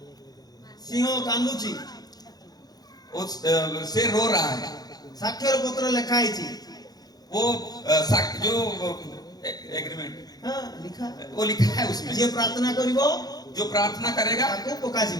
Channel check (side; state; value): right; late; 0.19 ms